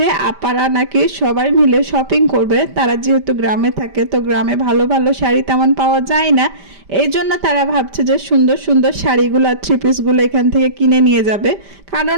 আপারা নাকি সবাই মিলে শপিং করবে। তারা যেহেতু গ্রামে থাকে, তো গ্রামে ভালো ভালো শাড়ি তেমন পাওয়া যায় না, এই জন্য তারা ভাবছে যে সুন্দর সুন্দর শাড়িগুলো থ্রি পিসগুলো এখান থেকে কিনে নিয়ে যাবে।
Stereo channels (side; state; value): left; late; 5.1 ms